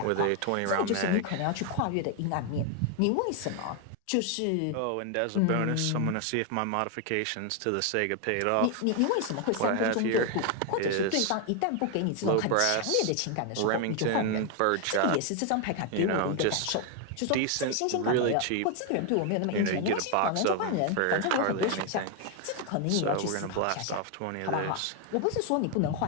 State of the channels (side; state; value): both; different; correlation 0.01